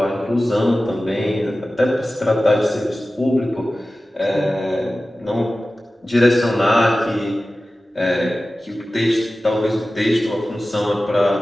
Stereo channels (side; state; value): both; normal; correlation 0.95